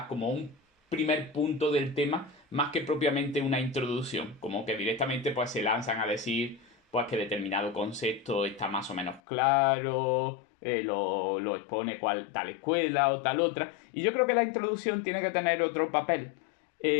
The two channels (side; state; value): right; drops out; at 9.2 s